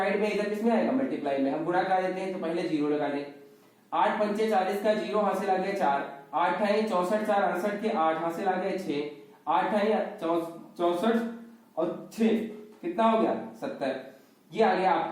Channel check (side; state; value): both; identical; correlation 1.00